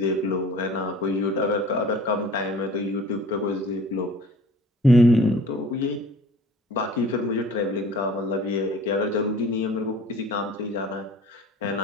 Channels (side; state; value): both; normal; correlation 0.47